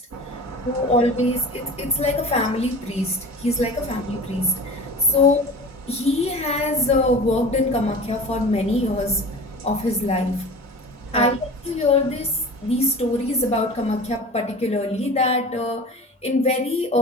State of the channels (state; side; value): normal; both; correlation 0.37